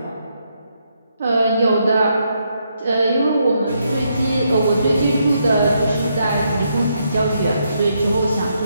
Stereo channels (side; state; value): both; inverted; correlation -0.78